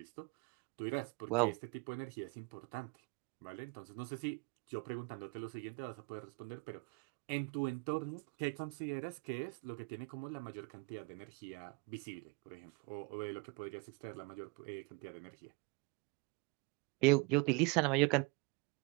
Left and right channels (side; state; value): left; quieter; 26.5 dB